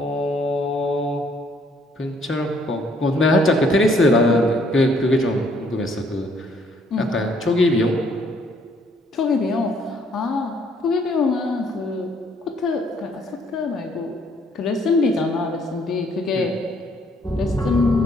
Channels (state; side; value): normal; both; correlation 0.66